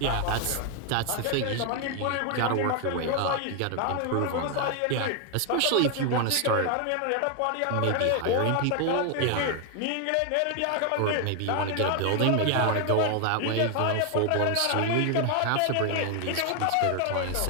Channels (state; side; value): different; both; correlation 0.00